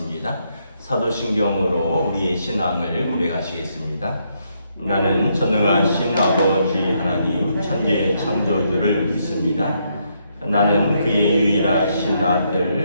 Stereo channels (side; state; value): both; inverted; correlation -0.76